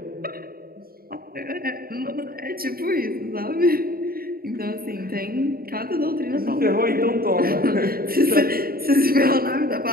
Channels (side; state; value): left; late; 0.43 ms